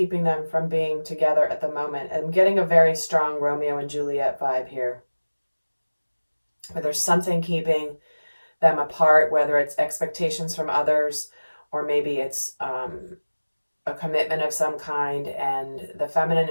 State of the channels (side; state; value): both; inverted; correlation -1.00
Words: them from being together at the moment. I'm getting a very strong Romeo and Juliet vibe here. Where there's something keeping them apart, whether it's expectations from others, or maybe it's a commitment of some kind, and the feminine